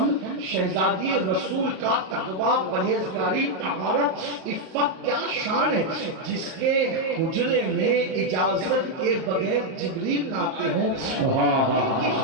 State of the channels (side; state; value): left; late; 37 ms